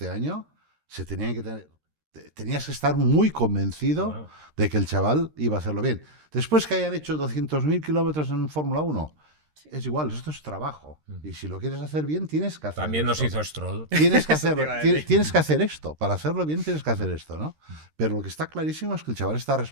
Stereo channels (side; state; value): left; late; 13 ms